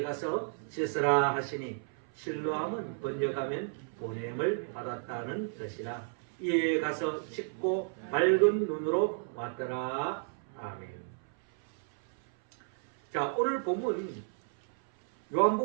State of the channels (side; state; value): left; silent; 56 dB below the other